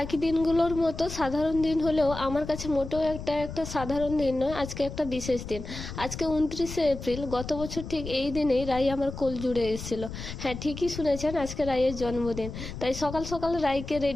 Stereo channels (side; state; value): left; noise; rumble, 9 dB below the sound